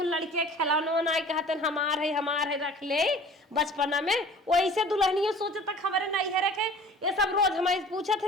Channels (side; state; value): both; normal; correlation 0.46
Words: लड़के खिलौना ना कहते हमार है रख ले बचपना में वैसे दुल्हनियों सोचे तक हमारे नहीं है रखे ये सब रोज हमारे पूछा